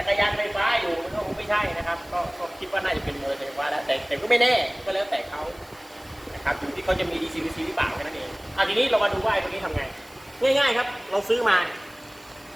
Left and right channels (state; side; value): noise; right; hiss, 26 dB below the sound